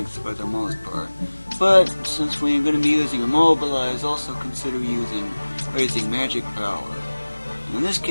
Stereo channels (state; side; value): inverted; both; correlation -1.00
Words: for the most part. But since we're going to be using immobilize, also consider raising magic power. In this